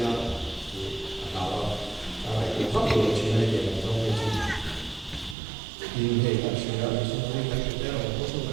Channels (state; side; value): drops out; left; at 5.4 s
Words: nào nào này cũng phát biểu chuyện này để làm trong cái chuyện nhưng hệ các sự ra thì sau này các cái là có số